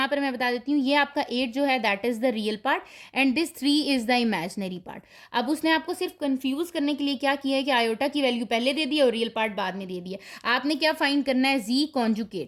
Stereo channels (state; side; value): identical; both; correlation 1.00